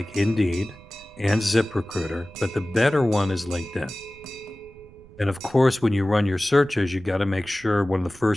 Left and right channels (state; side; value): noise; right; rumble, 22 dB below the sound